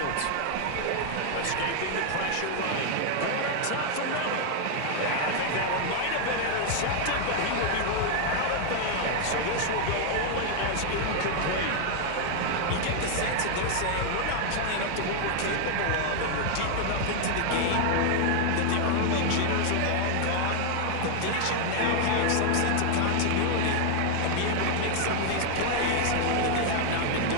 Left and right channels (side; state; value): both; different; correlation 0.00